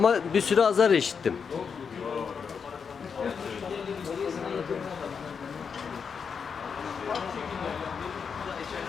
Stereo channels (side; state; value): right; quieter; 6.2 dB